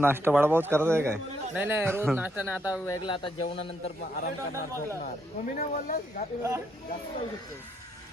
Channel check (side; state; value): both; normal; correlation 0.76